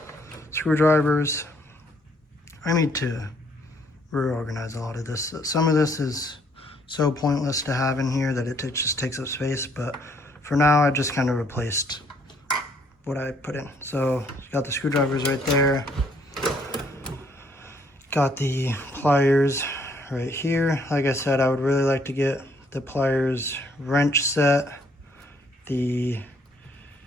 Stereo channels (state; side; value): normal; both; correlation 0.66